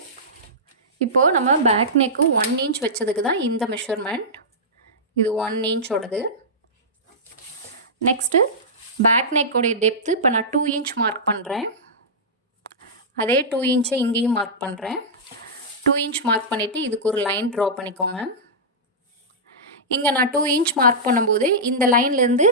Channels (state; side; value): normal; both; correlation -0.14